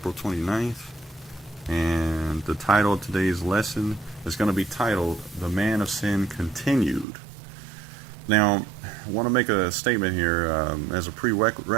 29th, and the title of today's lesson is going to be titled, The Man of Sin Continued. Now, I want to make a statement here as a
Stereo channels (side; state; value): left; drops out; at 7.1 s